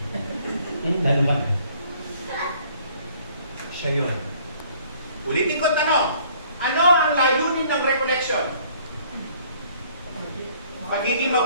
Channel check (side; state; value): both; inverted; correlation -0.59